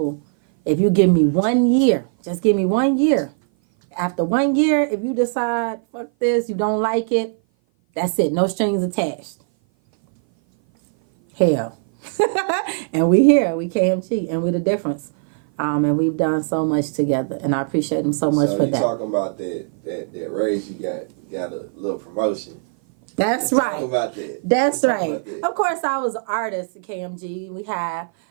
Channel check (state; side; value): silent; left; 57 dB below the other